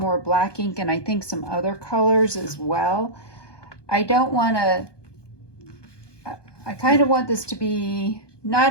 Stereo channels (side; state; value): right; late; 1.2 ms